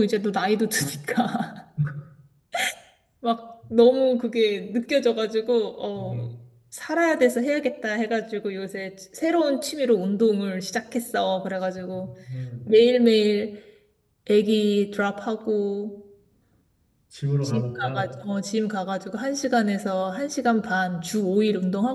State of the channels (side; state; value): both; identical; correlation 1.00